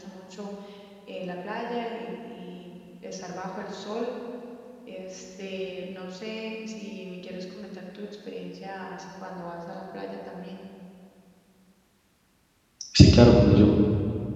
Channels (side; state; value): both; identical; correlation 1.00